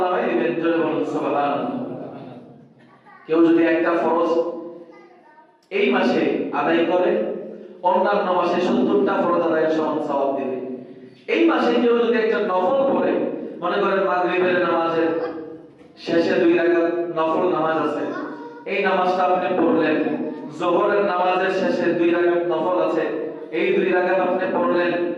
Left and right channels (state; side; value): identical; both; correlation 1.00